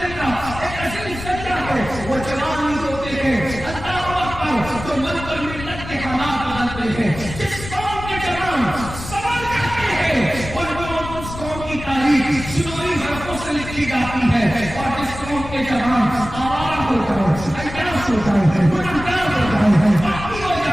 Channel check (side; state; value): left; noise; rumble, 11 dB below the sound